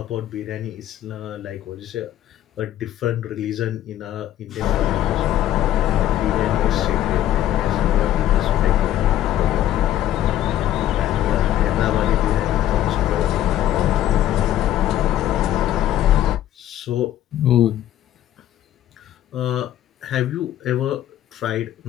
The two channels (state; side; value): quieter; right; 12.5 dB